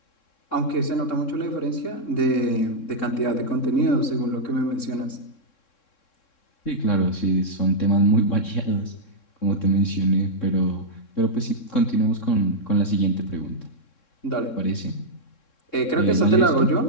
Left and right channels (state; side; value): late; right; 3.7 ms